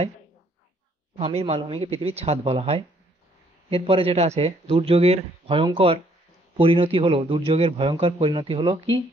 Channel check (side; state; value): both; normal; correlation 0.65